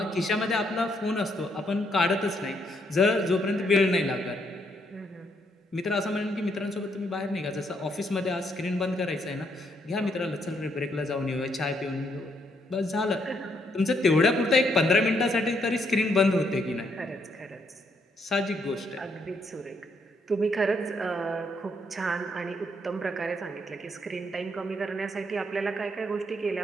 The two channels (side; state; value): both; normal; correlation 0.74